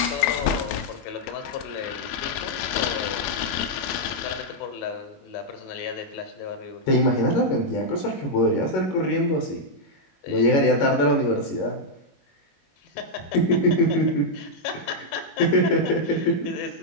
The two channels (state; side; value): late; right; 21 ms